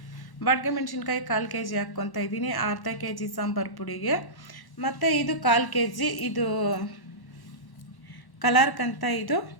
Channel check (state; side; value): late; right; 1.1 ms